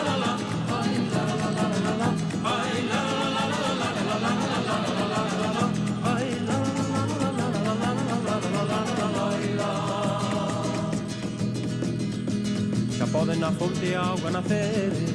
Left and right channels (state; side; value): identical; both; correlation 1.00